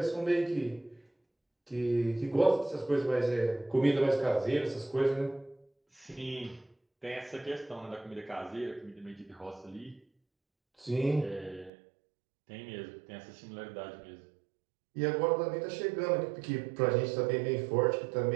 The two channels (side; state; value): left; drops out; at 11.7 s